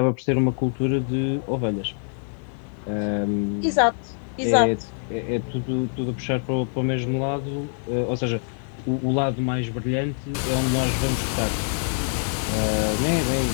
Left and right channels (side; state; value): right; silent; 62 dB below the other